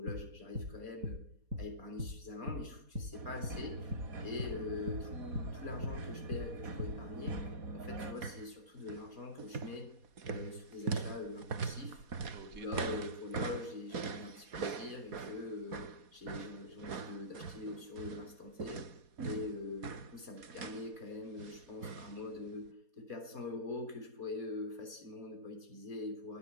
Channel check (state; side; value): late; left; 4.2 ms